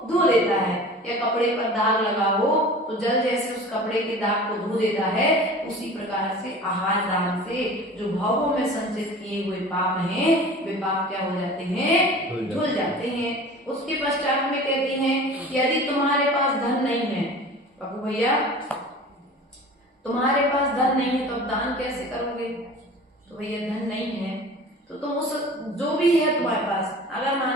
धो लेता है, या कपड़े पर दाग लगा हो तो जल जैसे उस कपड़े के दाग को धो देता है, उसी प्रकार से आहार दान से जो भावों में संचित किए हुए पाप हैं वे पाप क्या हो जाते हैं, धुल जाते हैं। उसके पश्चात में कहती हैं कि यदि तुम्हारे पास धन नहीं है, बाबू भैया तुम्हारे पास धन नहीं है तो अब दान कैसे करोगे? तो भैया धन नहीं है तो तुम उस जो भी है तुम्हारे पास, अगर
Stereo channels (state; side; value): normal; both; correlation 0.40